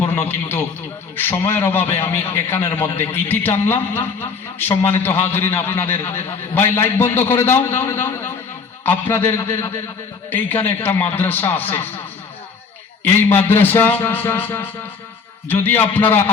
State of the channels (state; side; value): quieter; right; 5.2 dB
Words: কিন্তু সময়ের অভাবে আমি এখানের মধ্যে ইতি টানলাম। সম্মানিত হাজরিন, আপনাদের ভাই লাইট বন্ধ করে দাও। আপনাদের এইখানে একটা মাদ্রাসা আছে, এই মাদ্রাসা যদি আপনারা